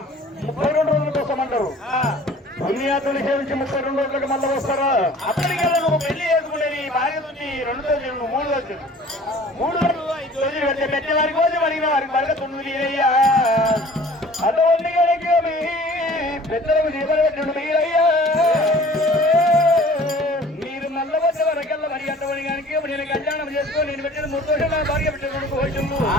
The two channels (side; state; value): both; normal; correlation 0.48